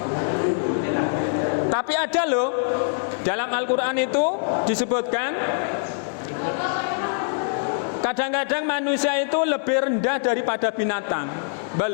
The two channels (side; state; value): right; silent; digital silence